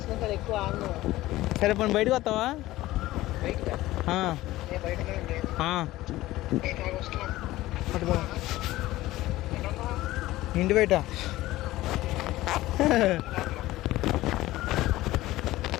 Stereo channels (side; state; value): right; quieter; 16.9 dB